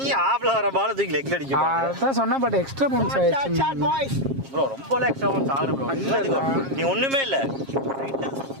ஆப்ல வர பால் தூக்கி லெக்ல அடிக்க பாரு. அதான் சொன்னா, பட் எக்ஸ்ட்ரா பவுன்ஸ் ஆயிடுச்சு ப்ரோ. ரொம்ப எக்ஸ்ட்ரா பவுன்ஸ் ஆகல ப்ரோ. நீ ஒண்ணுமே இல்ல.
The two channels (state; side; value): late; left; 7.4 ms